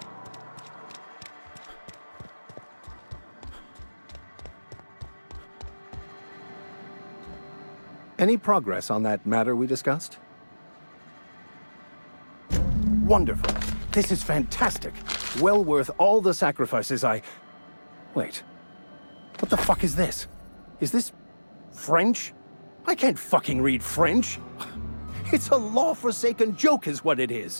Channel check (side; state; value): both; inverted; correlation -1.00